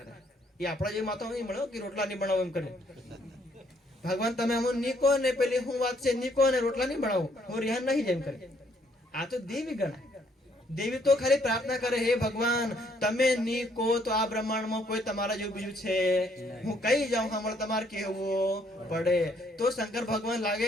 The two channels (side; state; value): both; normal; correlation 0.68